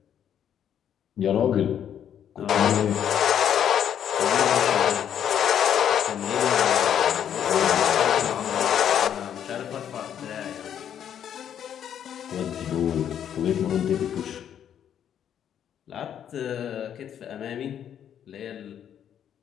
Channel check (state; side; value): quieter; right; 9.4 dB